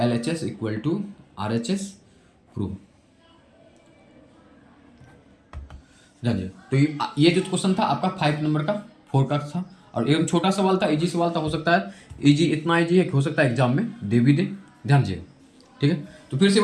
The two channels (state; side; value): identical; both; correlation 1.00